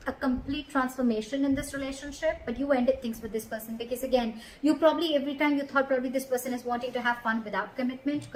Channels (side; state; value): both; identical; correlation 1.00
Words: a complete transformation in this relationship, but you ended things with this person because, again, you probably, every time you thought probably this person is wanting to have fun without commitment,